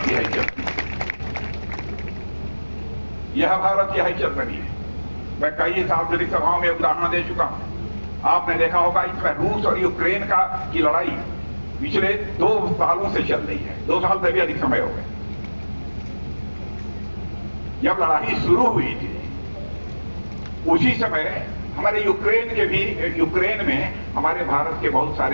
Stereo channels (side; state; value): both; inverted; correlation -1.00